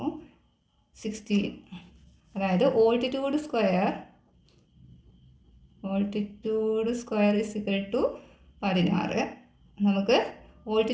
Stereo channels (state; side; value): identical; both; correlation 1.00